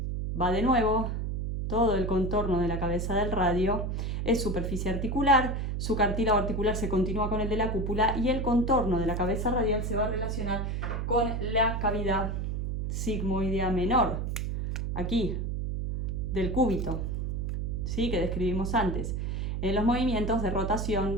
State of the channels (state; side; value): noise; right; hum, 1 dB below the sound